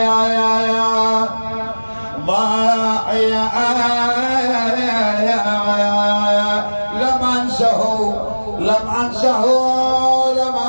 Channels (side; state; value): both; inverted; correlation -1.00